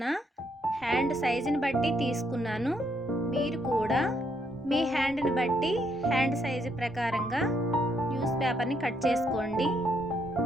హ్యాండ్ సైజుని బట్టి తీసుకున్నాను. మీరు కూడా మీ హ్యాండ్ని బట్టి హ్యాండ్ సైజు ప్రకారంగా న్యూస్ పేపర్ని కట్ చేసుకోండి.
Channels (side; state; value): both; normal; correlation 0.74